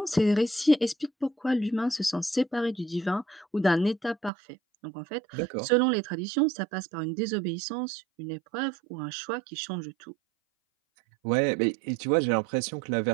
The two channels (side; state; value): left; drops out; at 4.3 s